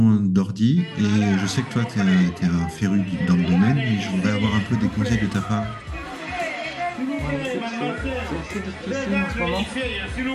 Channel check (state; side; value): identical; both; correlation 1.00